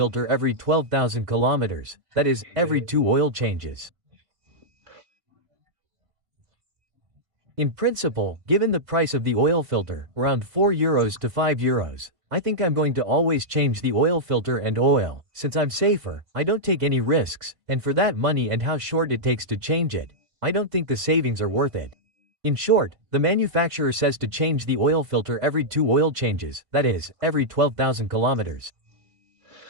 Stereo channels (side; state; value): left; late; 3.6 ms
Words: every 12,000 kilometers, that is, every 2 oil changes. In principle, given the price of the oil filter, around €4 to €5, I think I'm going to always change the oil filter and oil, since I'm safer, I don't take any risks, and for that money and how short it takes to change it, I don't think the savings are worth it. In short, the manufacturer says to change the oil filter every 2 oil changes, that is, every 12,000 kilometers.